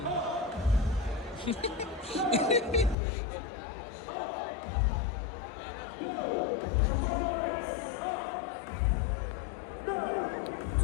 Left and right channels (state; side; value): drops out; right; at 3.0 s